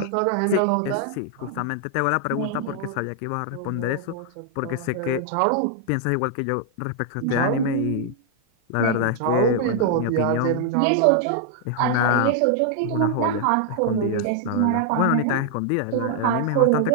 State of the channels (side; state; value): both; different; correlation 0.00